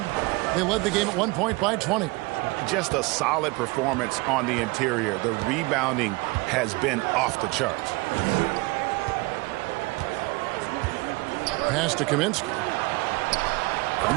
They led the game at 1 point by 20. Just a solid performance on the interior. The rebounding has been off the charts. Pass to Kaminsky.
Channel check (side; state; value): left; quieter; 24.5 dB